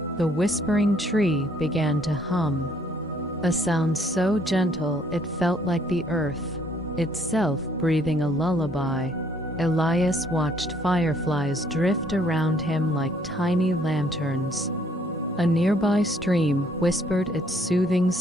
The whispering tree began to hum, a sound so gentle it felt like the earth itself breathing a lullaby. Elias watched fireflies drift around him like tiny lanterns. A nearby stream whispered its soothing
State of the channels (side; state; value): both; normal; correlation 0.64